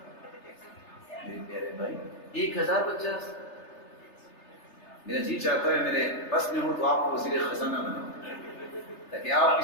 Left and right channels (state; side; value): late; right; 3.3 ms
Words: میرے پیارے بھائی، 1,050۔ میرا جی چاہتا ہے میرے بس میں ہوں تو آپ کو وزیر خزانہ بناؤں، تاکہ آپ